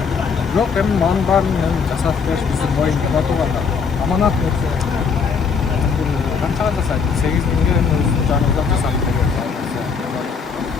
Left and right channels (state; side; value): quieter; right; 5.7 dB